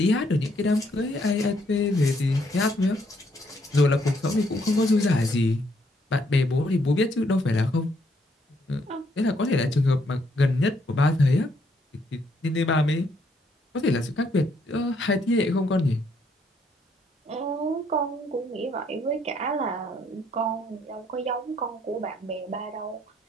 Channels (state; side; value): normal; both; correlation 0.71